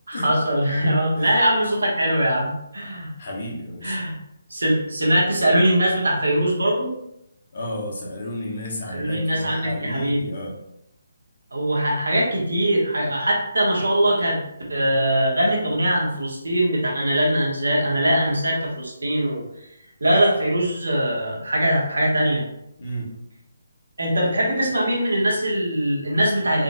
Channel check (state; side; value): inverted; both; correlation -0.85